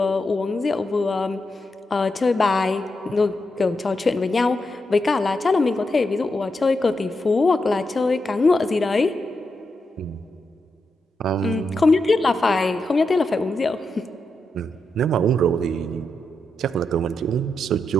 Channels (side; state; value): both; normal; correlation 0.85